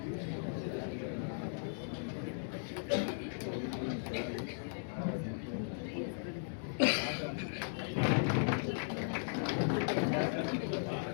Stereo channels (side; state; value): right; silent; digital silence